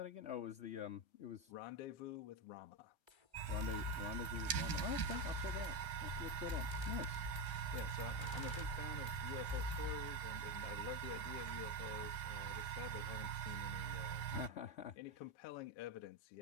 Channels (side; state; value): right; late; 1.3 ms